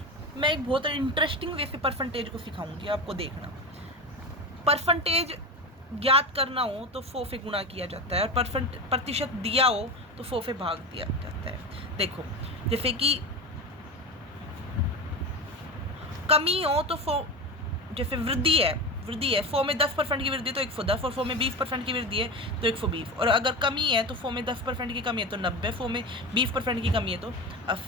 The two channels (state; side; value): normal; both; correlation 0.24